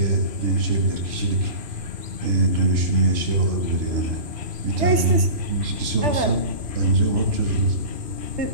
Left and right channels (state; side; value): late; left; 3.3 ms